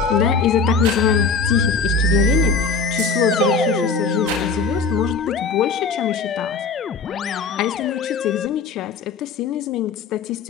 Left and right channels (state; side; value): quieter; right; 4.8 dB